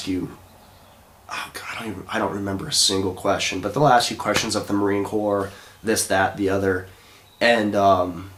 you, oh God, I don't remember a single question, but they'll ask you questions of the Marine Corps, this, that, the other. And,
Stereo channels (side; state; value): both; identical; correlation 1.00